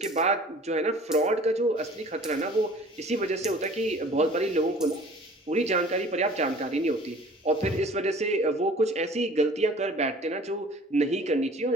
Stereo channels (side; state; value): both; normal; correlation 0.48